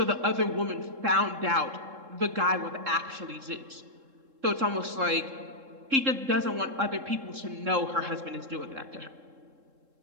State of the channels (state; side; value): late; left; 3.7 ms